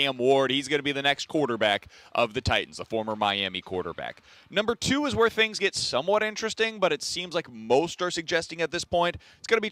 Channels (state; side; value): identical; both; correlation 1.00